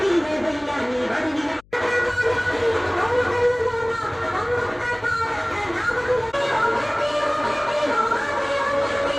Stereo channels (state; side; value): noise; left; hum, 29 dB below the sound